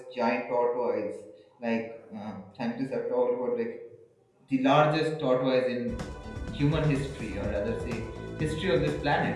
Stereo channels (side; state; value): both; identical; correlation 1.00